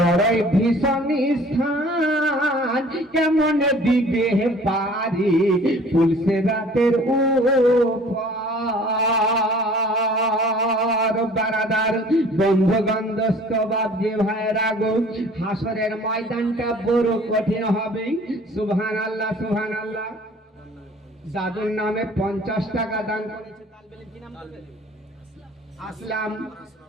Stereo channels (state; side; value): normal; both; correlation 0.50